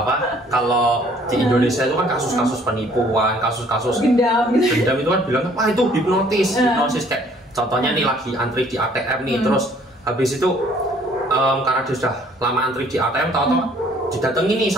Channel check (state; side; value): normal; both; correlation 0.59